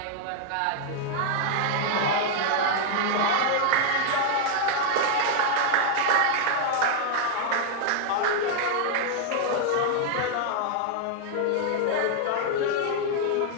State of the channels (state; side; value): different; both; correlation 0.00